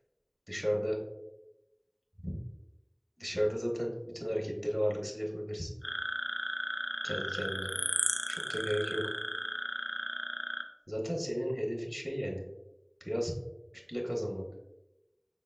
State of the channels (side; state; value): both; identical; correlation 1.00